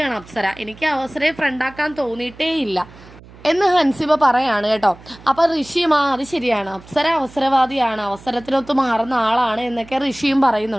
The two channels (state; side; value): noise; right; hum, 21 dB below the sound